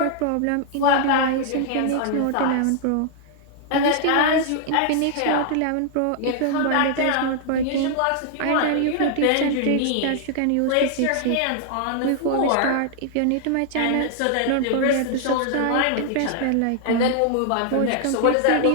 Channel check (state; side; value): different; both; correlation -0.01